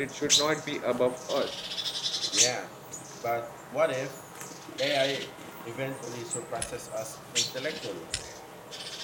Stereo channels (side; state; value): both; identical; correlation 1.00